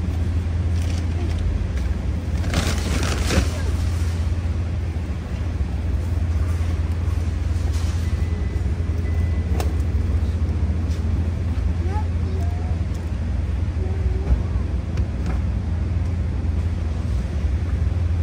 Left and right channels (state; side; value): identical; both; correlation 1.00